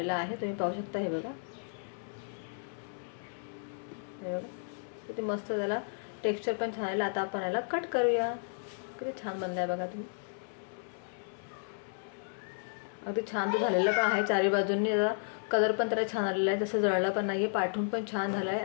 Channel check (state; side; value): silent; right; 56 dB below the other